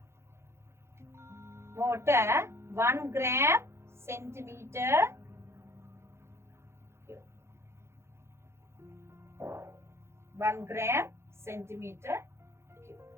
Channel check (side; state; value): left; late; 0.13 ms